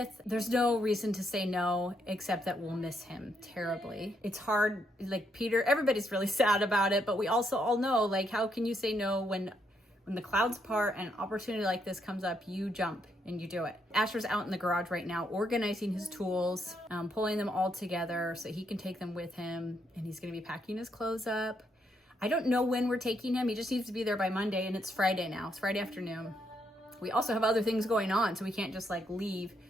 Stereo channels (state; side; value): normal; both; correlation 0.76